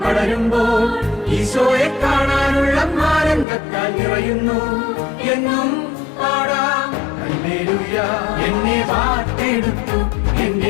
ഈശോയെ കാണാനുള്ള ആനന്ദത്താൽ നിറയുന്നു. എന്നും പാടാം ഹല്ലേലൂയ. എന്നെ വാർത്തെടുത്തു,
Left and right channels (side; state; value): right; drops out; at 3.5 s